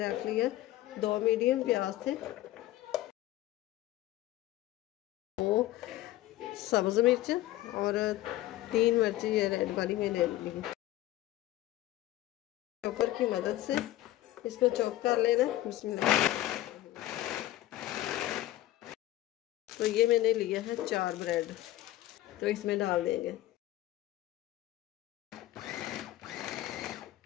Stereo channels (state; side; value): quieter; right; 15.2 dB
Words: रख लिया, 2 मीडियम प्याज थे, 2 सब्ज़ मिर्च और 3 मिर्ची ये रेड वाली मैंने ली। चॉपर की मदद से इसको चॉप कर लेना। बिस्मिल्लाह। तो ये मैंने लिया है 4 ब्रेड, तो इसमें डाल देंगे।